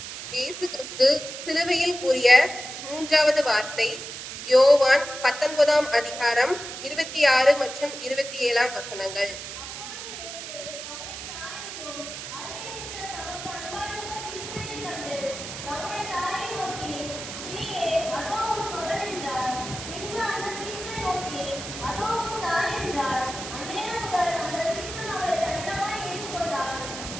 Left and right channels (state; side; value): noise; right; hiss, 9 dB below the sound